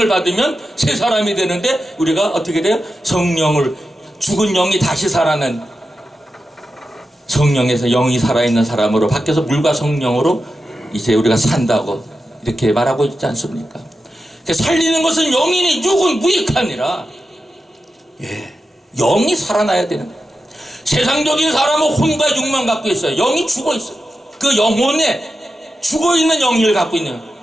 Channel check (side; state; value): both; normal; correlation 0.91